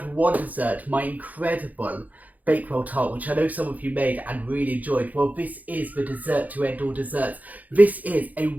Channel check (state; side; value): late; left; 0.079 ms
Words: one dessert, my incredible Bakewell tart, which I know some of you made and really enjoyed. Well, this is the dessert to end all desserts. This is a